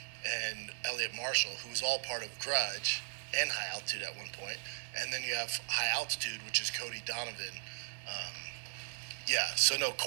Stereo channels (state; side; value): silent; left; 53 dB below the other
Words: and Elliot Marshall, who was all part of Grudge and High Altitude at one point. And then you have High Altitude, which is Cody Donovan. Yeah, so no,